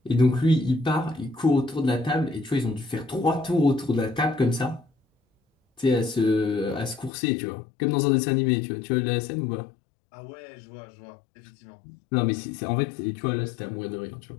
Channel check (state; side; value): drops out; right; at 7.1 s